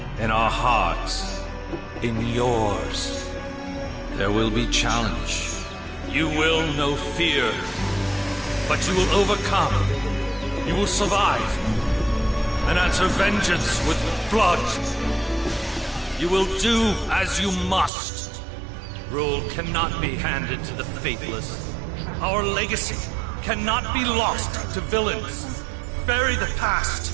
in our hearts, in yours. There will be challenge. You will know fear, but you will overcome. You will survive and answer vengeance with blood. You will do as you must. Rule cannot be handed to the faithless. Our legacy cannot be lost to villains. Bury the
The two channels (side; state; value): left; drops out; at 17.9 s